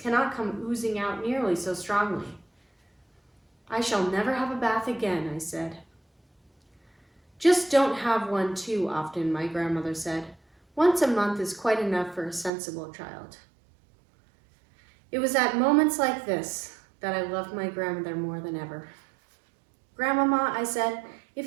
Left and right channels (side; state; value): left; drops out; at 12.5 s